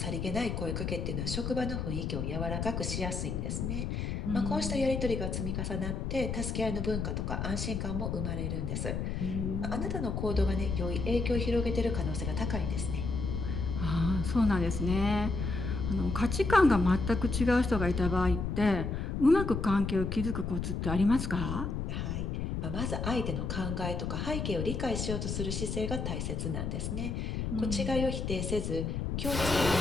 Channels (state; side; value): noise; left; rumble, 2 dB below the sound